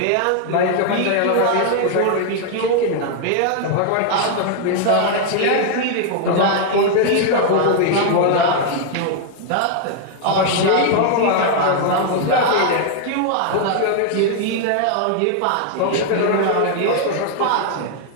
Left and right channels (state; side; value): different; both; correlation 0.00